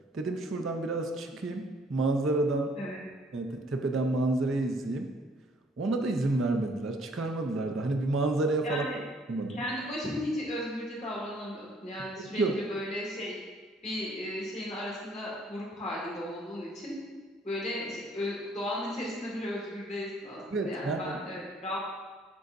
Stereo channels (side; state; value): both; normal; correlation 0.62